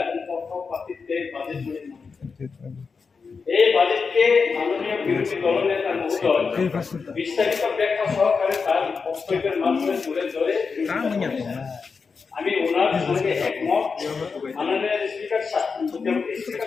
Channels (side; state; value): right; quieter; 5.1 dB